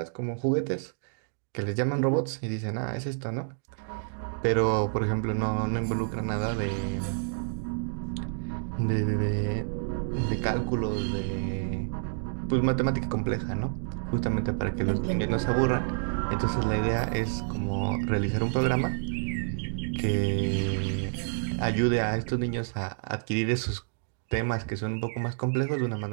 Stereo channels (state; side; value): silent; left; digital silence